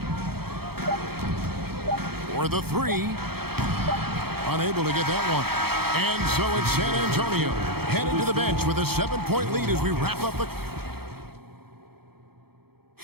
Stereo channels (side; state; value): left; late; 0.96 ms